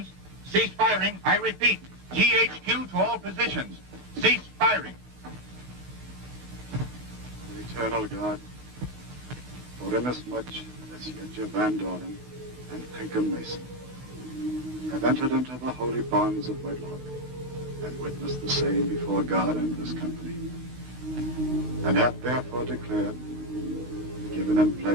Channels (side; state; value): left; late; 16 ms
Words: Cease firing. I repeat, GHQ to all positions. Cease firing. O eternal God, for inasmuch as Yetja Van Doren and Pinkham Mason have entered into the holy bonds of wedlock and witnessed the same before God and this company, and have therefore declared, given and